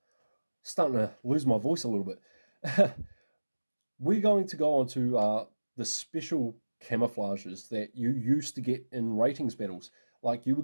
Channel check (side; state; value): both; inverted; correlation -1.00